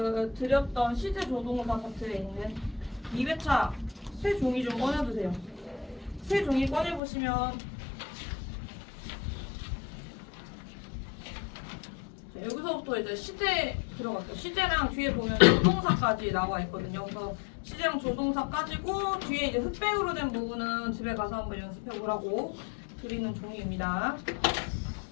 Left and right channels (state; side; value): drops out; right; at 7.0 s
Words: 드렸던 시제 조동사 파트에 있는 2회차 새 종이 좀 꺼내주세요. 새 종이 꺼내보시면 여기서부터 이제 시제 들어갔죠. 시제랑 뒤에 보면 조동사까지 나와 있거든요. 그래서 시제랑 조동사까지고 뒤에 이제 흑백으로 된 부분은 집에 가서 한번 연습해 보라고 드리는 종이입니다.